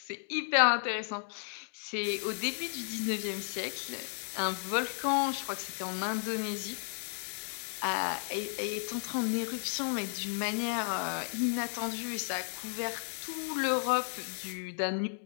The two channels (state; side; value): silent; right; digital silence